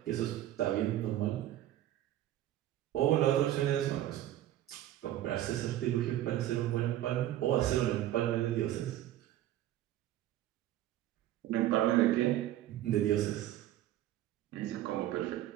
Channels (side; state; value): left; quieter; 13.4 dB